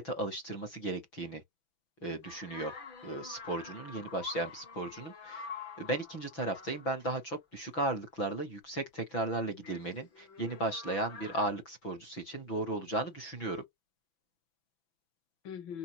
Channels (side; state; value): right; late; 6.0 ms